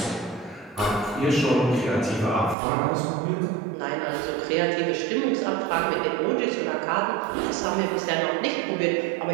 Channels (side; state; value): left; drops out; at 2.6 s